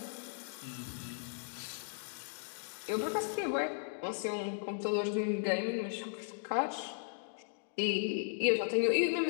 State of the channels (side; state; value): right; silent; digital silence